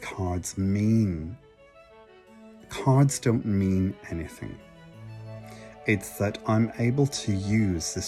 don't mean anything. It's that I'm able to use the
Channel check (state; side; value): identical; both; correlation 1.00